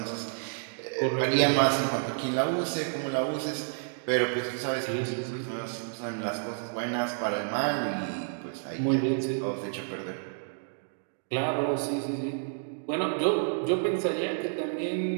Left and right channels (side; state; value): left; silent; digital silence